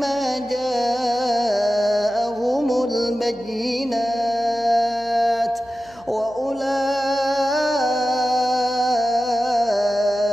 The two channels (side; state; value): left; noise; hum, 26 dB below the sound